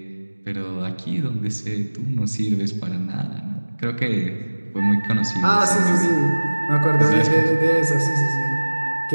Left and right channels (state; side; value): inverted; both; correlation -1.00